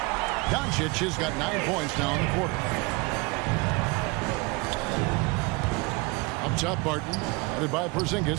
Doncic has got 9 points now in the quarter. Up top, Barton. Headed by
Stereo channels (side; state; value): left; quieter; 25.9 dB